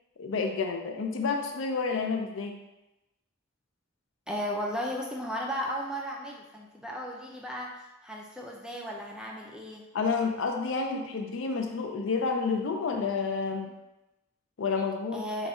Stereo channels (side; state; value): right; quieter; 3.4 dB